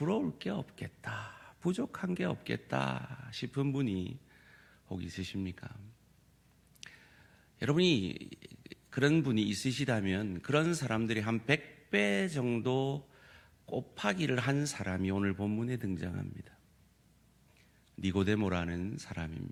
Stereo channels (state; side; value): identical; both; correlation 1.00